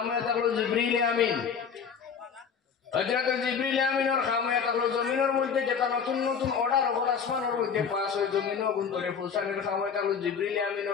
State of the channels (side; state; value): right; quieter; 6.6 dB